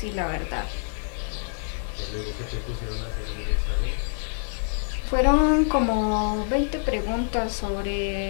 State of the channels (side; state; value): right; silent; digital silence